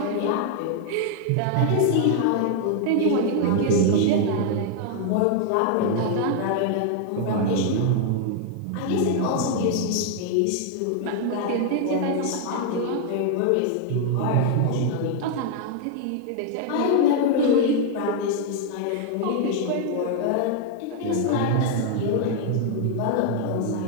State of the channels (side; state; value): both; different; correlation 0.00